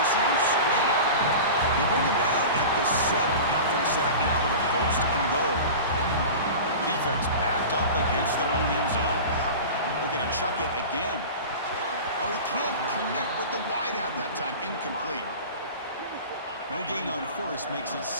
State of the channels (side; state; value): both; inverted; correlation -0.33